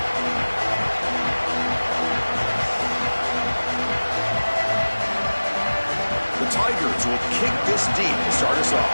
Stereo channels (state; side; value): inverted; both; correlation -1.00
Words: The Tigers will kick this deep to start us